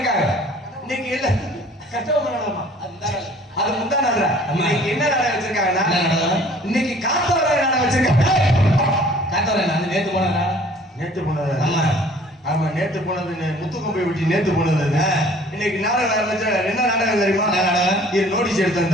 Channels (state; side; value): normal; both; correlation 0.53